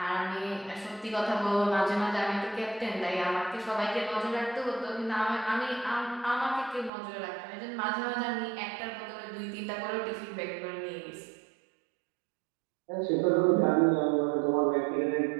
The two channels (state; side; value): drops out; left; at 6.9 s